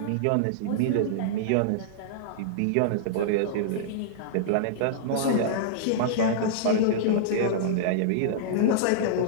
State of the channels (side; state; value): both; different; correlation -0.02